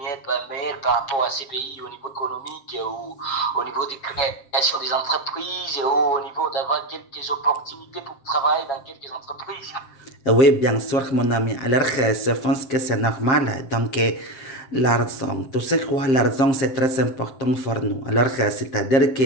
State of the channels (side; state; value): right; late; 7.5 ms